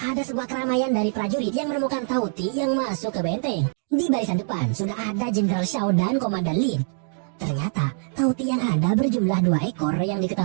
sebuah keramaian dari prajurit yang menemukan Tauti yang masuk ke benteng. Di barisan depan, sudah ada Jenderal Shao dan Komandan Lin. Ternyata, Tauti yang ada berjumlah 2 ekor yang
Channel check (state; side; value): silent; left; 63 dB below the other